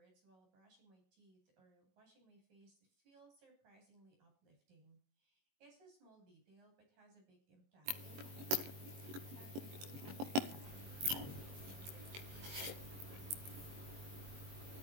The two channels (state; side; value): late; left; 21 ms